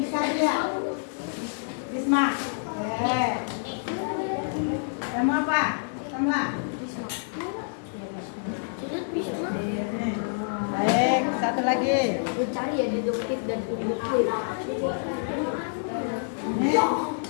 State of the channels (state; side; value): silent; right; 60 dB below the other